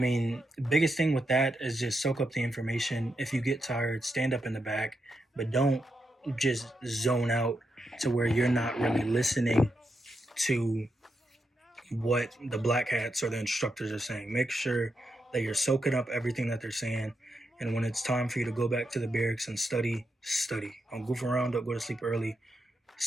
the biggest thing with that is just soak up the information. If you get tired, stand up in the back, but don't just zone out to where you're not really listening to what the black hats or the instructors are saying. Make sure that you're soaking up everything that they're saying. And when it's time for you to go back to the barracks and study, study. Don't goof around, don't go to sleep early.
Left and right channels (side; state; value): both; normal; correlation 0.84